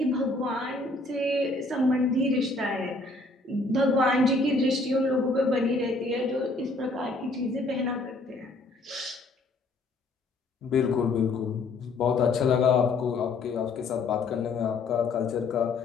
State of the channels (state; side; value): quieter; right; 3.3 dB